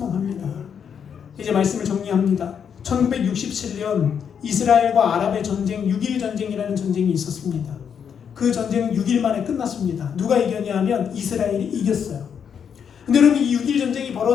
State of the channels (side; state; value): right; quieter; 7.5 dB